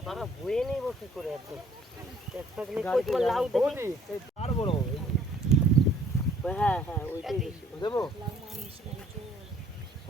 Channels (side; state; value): both; normal; correlation 0.59